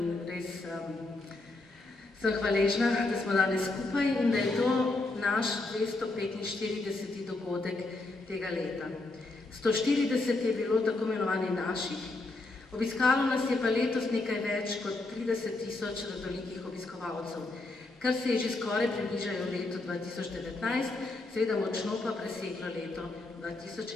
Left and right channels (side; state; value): right; quieter; 3.1 dB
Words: res sem hvaležna, da smo danes skupaj in da je to naš 245. dogodek tega leta. 140 je bilo tako imenovani naših, obiskalo nas je pa letos nekaj več kot 30.000 radolikih obiskovalcev, kar se je že skoraj približajo letu 2019, seveda močno pa preseglo leto